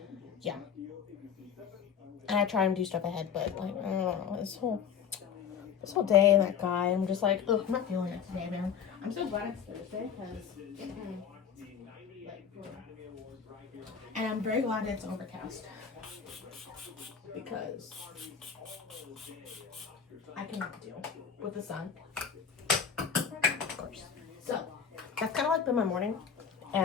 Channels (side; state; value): right; quieter; 7.3 dB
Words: yeah. And I try and do stuff ahead, but like, I don't know, this whole day and that guy, I'm just like, ugh, I'm not feeling it today, man. I'm so glad it's Thursday, because and I'm very glad it's overcast, because I cannot deal with the sun, of course. So that's kind of like been my morning